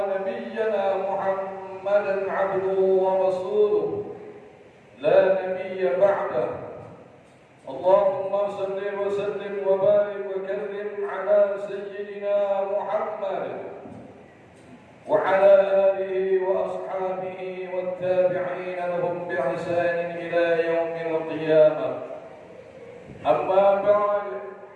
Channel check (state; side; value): identical; both; correlation 1.00